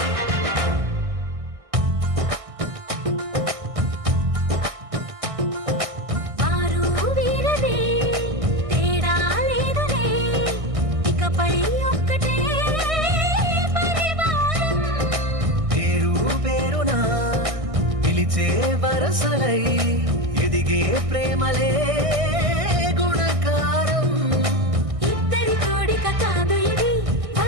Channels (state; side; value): late; left; 1.6 ms